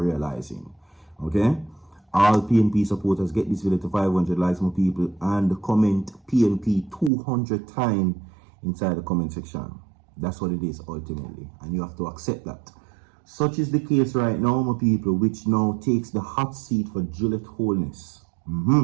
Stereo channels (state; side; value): drops out; left; at 7.1 s